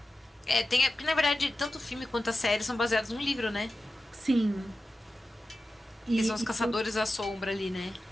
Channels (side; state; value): both; normal; correlation 0.93